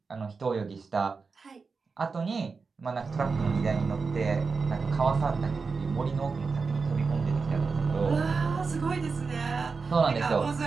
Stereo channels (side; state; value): left; quieter; 4.7 dB